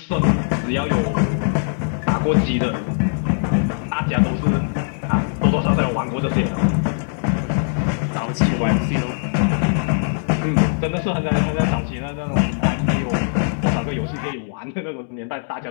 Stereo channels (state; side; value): silent; right; digital silence